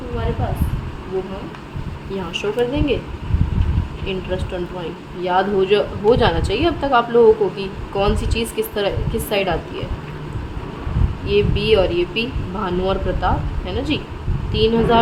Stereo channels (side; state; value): both; identical; correlation 1.00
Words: हमारे पास, वो हम यहाँ शो कर देंगे। इंटरेस्ट ऑन ड्राइंग याद हो जाना चाहिए अब तक आप लोगों को कि कौन सी चीज़ किस साइड आती है। ये बी और ये पी, भानु और प्रताप, है ना जी।